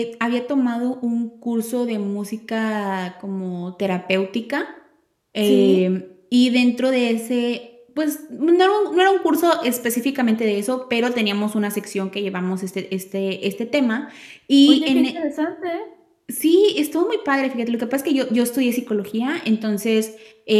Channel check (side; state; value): both; identical; correlation 1.00